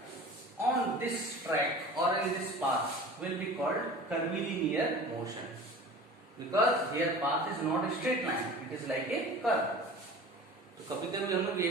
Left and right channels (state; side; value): normal; both; correlation 0.40